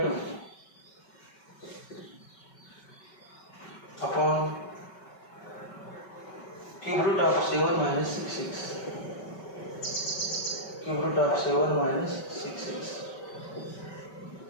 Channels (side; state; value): right; late; 5.2 ms